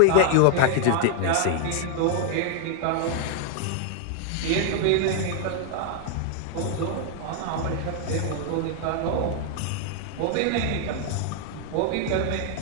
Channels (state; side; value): different; both; correlation -0.01